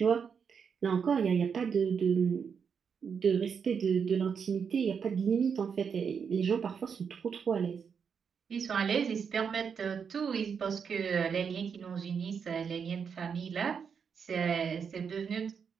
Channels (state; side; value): quieter; left; 6.6 dB